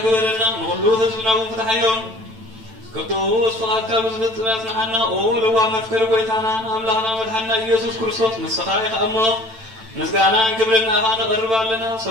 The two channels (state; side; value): late; left; 9.0 ms